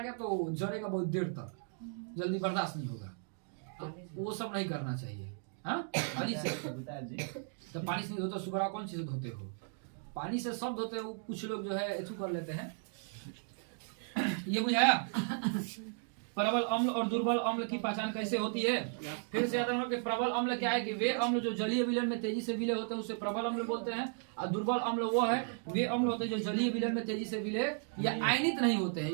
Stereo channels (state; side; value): silent; left; 54 dB below the other